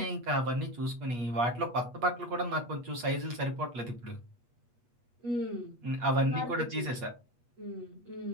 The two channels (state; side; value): late; left; 8.4 ms